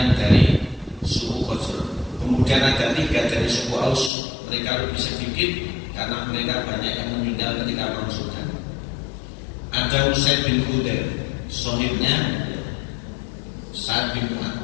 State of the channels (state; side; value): drops out; right; at 4.1 s